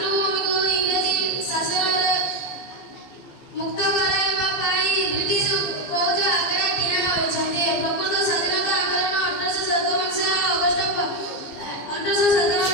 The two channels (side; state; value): right; late; 15 ms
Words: ଇଂରେଜ ଶାସନରୁ ମୁକ୍ତ କରାଇବା ପାଇଁ ବ୍ରିଟିଶ ଫୌଜ ଆଗରେ ଠିଆ ହୋଇଛନ୍ତି। ପ୍ରକୃତ ସ୍ୱାଧୀନତା ଆନ୍ଦୋଳନ